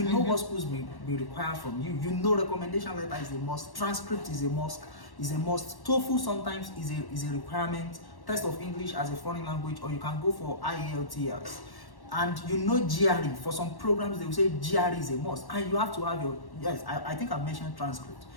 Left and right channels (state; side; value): late; right; 1.1 ms